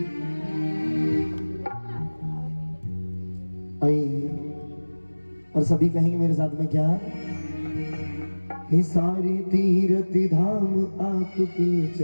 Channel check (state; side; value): inverted; both; correlation -1.00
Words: आइए और सभी कहेंगे मेरे साथ में क्या। हे सारे तीर्थ धाम आपके